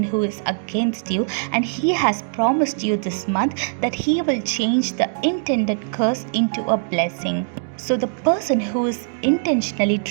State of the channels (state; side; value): silent; left; digital silence